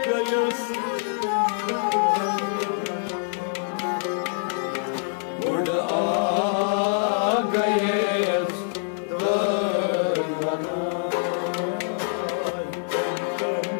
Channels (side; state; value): right; silent; 62 dB below the other